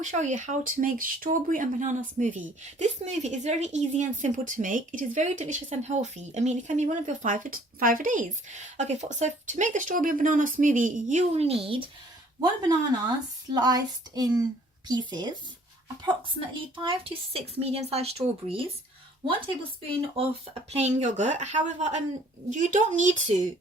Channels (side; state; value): both; normal; correlation 0.57